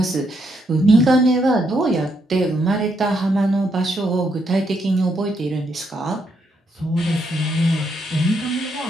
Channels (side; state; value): both; normal; correlation 0.77